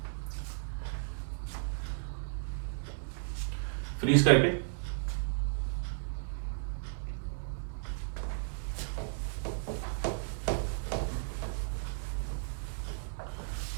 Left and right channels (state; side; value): silent; left; digital silence